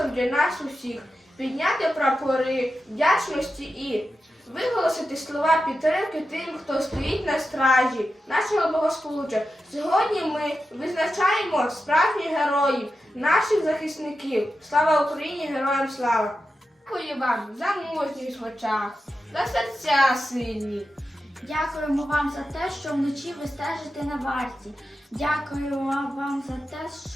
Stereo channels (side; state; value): both; normal; correlation 0.90